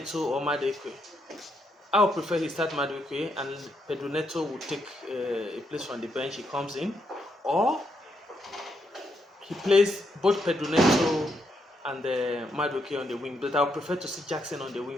or Madueke? I would prefer he start Madueke and Pedro Neto will take a place from the bench. He comes in, or he plays both Pedro Neto and Madueke on the wing. But I would prefer to see Jackson on the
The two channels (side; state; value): both; normal; correlation 0.78